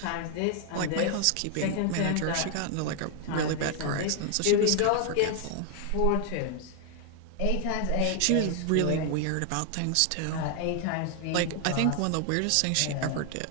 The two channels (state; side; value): different; both; correlation 0.00